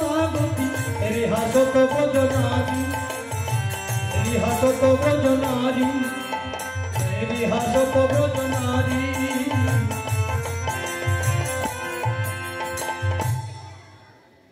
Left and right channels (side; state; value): both; identical; correlation 1.00